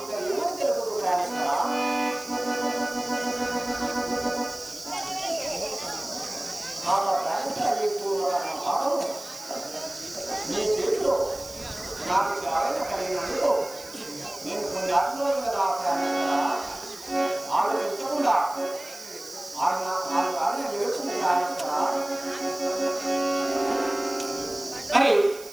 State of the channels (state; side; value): noise; right; hiss, 16 dB below the sound